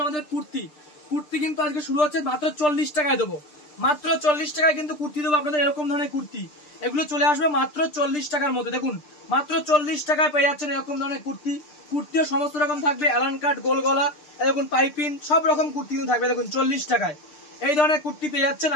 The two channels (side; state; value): right; late; 6.7 ms